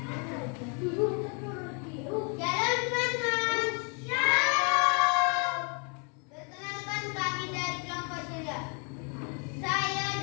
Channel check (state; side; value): quieter; right; 36.7 dB